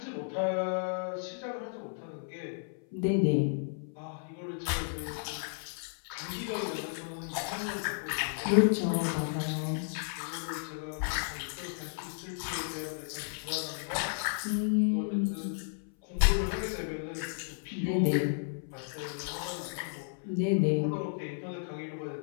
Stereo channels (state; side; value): silent; right; 56 dB below the other